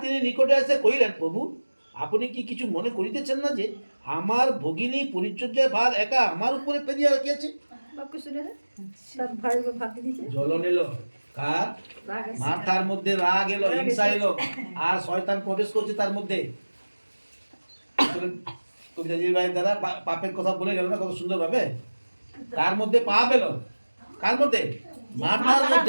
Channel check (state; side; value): inverted; both; correlation -1.00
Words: তিনি নিকটে এসে কহিলেন, প্রভু আপনি কি কিছু মনে করিতেছেন না যে আমার ভগিনী পরিচর্যার ভার একা আমার উপরে ফেলিয়া রাখিয়াছে? জ্বলন এলো কার? মাথার মধ্যে রাগ এলো, হিংসা এলো, আর শয়তান প্রবেশ করছে তার মধ্যে। কবিতাজির ভাইয়ের দ্বারা পাপের কথা বলে গেল না কত সুন্দর ভাবে। কার মধ্যে পাপ এলো? কার মধ্যে? মার্থার